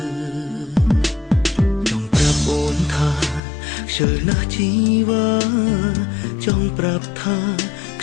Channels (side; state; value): right; drops out; at 3.4 s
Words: ចង់ប្រាប់អូនថាខ្ជិលណាស់ជីវ៉ាចង់ប្រាប់ថាខ្